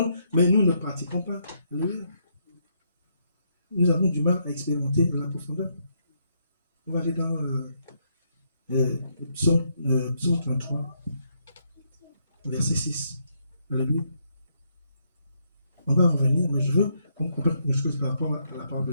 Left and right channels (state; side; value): inverted; both; correlation -0.75